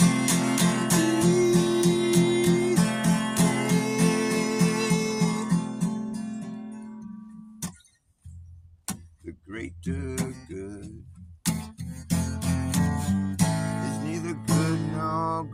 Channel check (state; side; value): identical; both; correlation 1.00